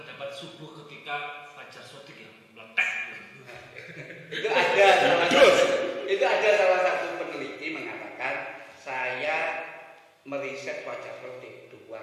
subuh ketika fajar sodik yang meletak. itu ada salah satu peneliti mengatakan saya meriset fajar sodik 2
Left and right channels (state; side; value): identical; both; correlation 1.00